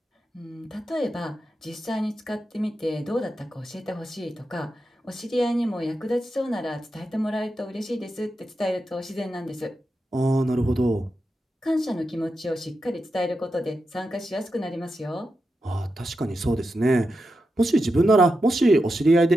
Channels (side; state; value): both; normal; correlation 0.88